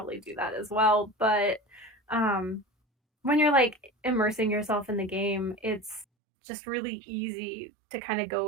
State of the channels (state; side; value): drops out; left; at 6.1 s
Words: do that as well. But when you're immersing yourself in the game, it's just really easy to kind of go